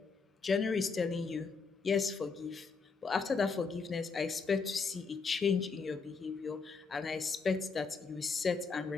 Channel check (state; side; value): quieter; right; 4.8 dB